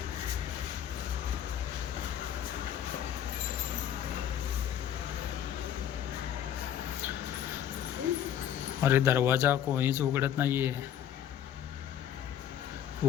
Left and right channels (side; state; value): right; quieter; 9.9 dB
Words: अरे दरवाजा कोणीच उघडत नाहीये.